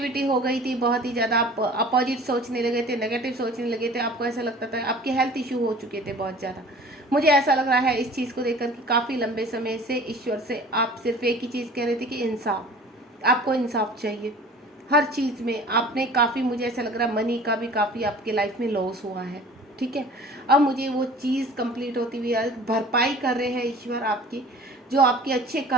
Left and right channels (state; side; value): normal; both; correlation 0.45